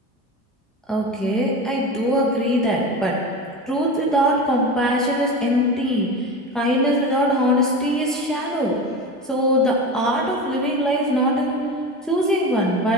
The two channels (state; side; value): normal; both; correlation 0.27